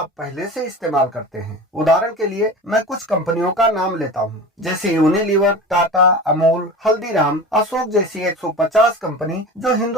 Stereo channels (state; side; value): normal; both; correlation 0.33